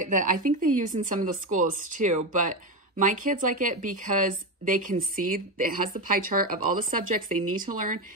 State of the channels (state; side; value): normal; both; correlation 0.14